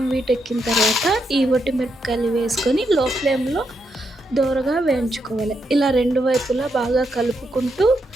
వీటెక్కిన తర్వాత ఈ మిరపకాయలు వేసుకొని లో ఫ్లేమ్లో దోరగా వేయించుకోవాలి. ఇలా రెండు వైపులా బాగా కలుపుకుంటూ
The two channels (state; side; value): normal; both; correlation 0.81